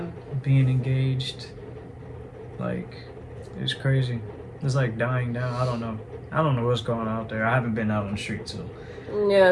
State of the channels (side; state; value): both; identical; correlation 1.00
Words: Being engaged, like, it's crazy. It's like dying down. I don't know what's going on out there. I haven't been out on the street, so.